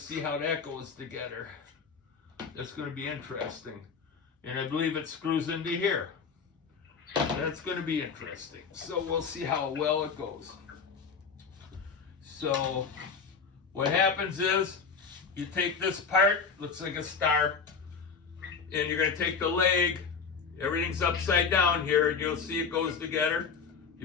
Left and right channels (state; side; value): quieter; right; 5.7 dB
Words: how that goes together. That's going to be interesting. And I believe it screws into here. That's going to be interesting. So we'll see how well it goes. So what happens is you take this part, looks like a star, and you're going to take the leg. Everything's upside down here, and you'll see it goes together.